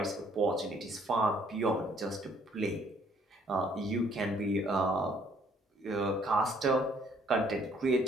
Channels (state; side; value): normal; both; correlation 0.63